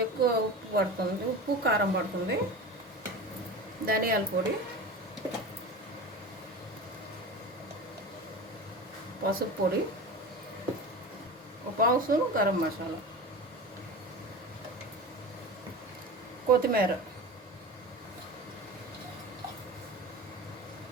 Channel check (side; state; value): both; normal; correlation 0.30